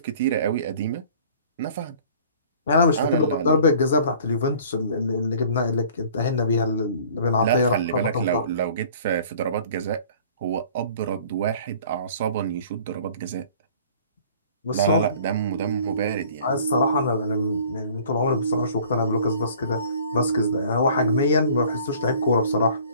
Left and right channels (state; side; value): inverted; both; correlation -0.50